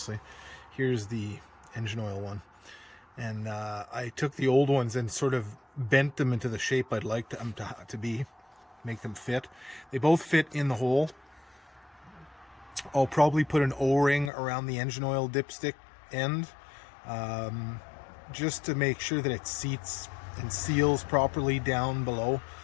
Here's the engine oil one. And I took the old ones and sort of bent them into the shape I'd like them to be, make them fit. They both fit in the hole. I'll probably put an O-ring around the engine oil dipstick end, just to make sure that it seats and seals properly down below,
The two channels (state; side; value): drops out; right; at 14.3 s